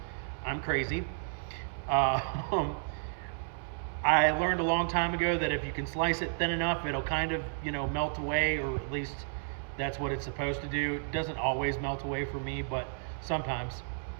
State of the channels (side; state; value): left; silent; 56 dB below the other